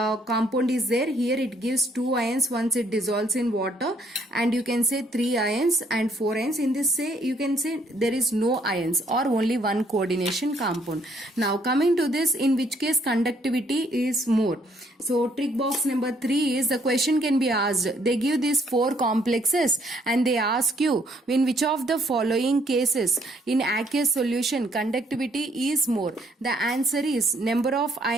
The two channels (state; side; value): normal; both; correlation 0.67